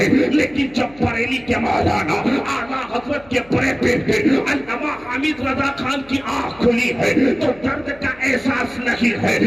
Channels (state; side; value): noise; left; hum, 25 dB below the sound